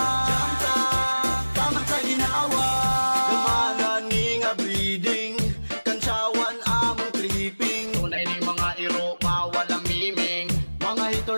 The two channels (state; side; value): inverted; both; correlation -1.00